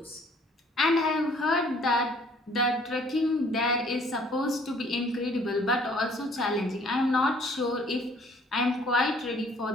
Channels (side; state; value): both; normal; correlation 0.58